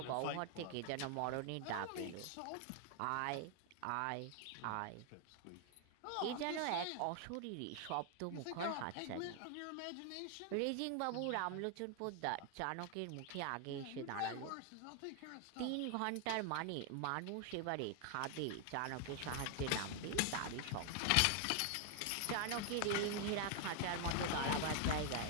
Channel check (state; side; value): different; both; correlation 0.00